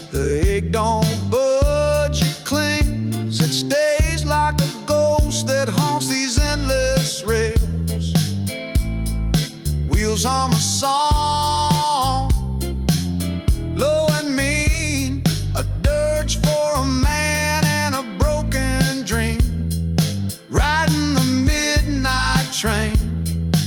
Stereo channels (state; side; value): identical; both; correlation 1.00